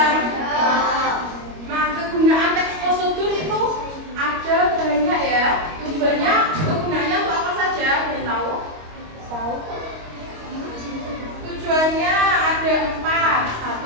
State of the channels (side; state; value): left; late; 25 ms